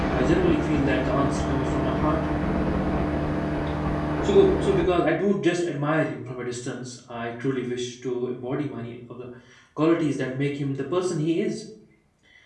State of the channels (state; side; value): identical; both; correlation 1.00